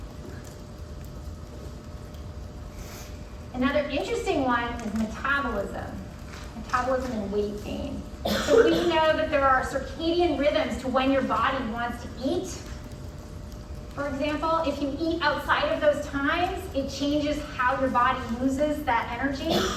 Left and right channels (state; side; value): identical; both; correlation 1.00